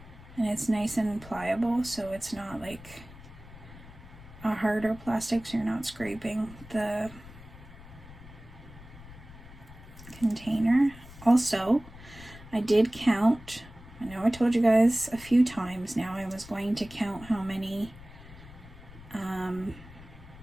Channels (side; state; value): left; noise; rumble, 18 dB below the sound